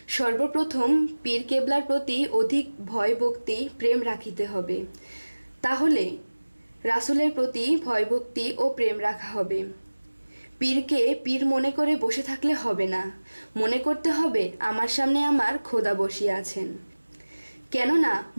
সর্বপ্রথম পীর কেবলার প্রতি অধিক ভয় ভক্তি প্রেম রাখিতে হবে। তাহলে রাসূলের প্রতি ভয় ভক্তি ও প্রেম রাখা হবে। পীরকে পীর মনে করে বসে থাকলে হবে না, মনে করতে হবে আমার সামনে আমার খোদা বসিয়া আছেন। কেননা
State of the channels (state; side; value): inverted; both; correlation -1.00